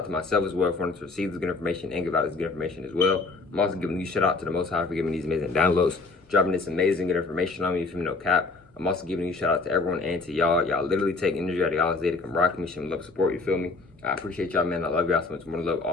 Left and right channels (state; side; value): quieter; right; 3.8 dB